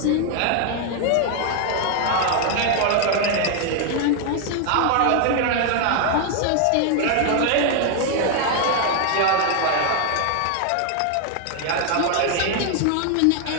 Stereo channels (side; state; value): both; different; correlation 0.01